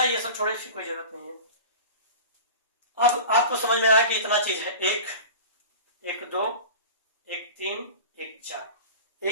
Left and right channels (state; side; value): inverted; both; correlation -0.36